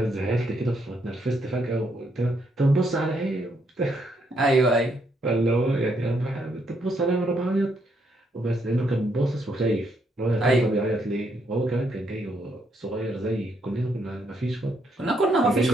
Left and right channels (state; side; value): normal; both; correlation 0.75